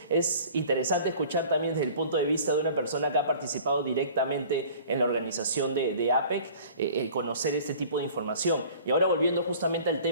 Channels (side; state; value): both; inverted; correlation -0.47